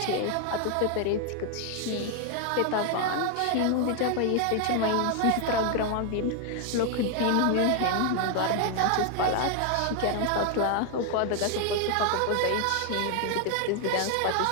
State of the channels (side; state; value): both; different; correlation 0.00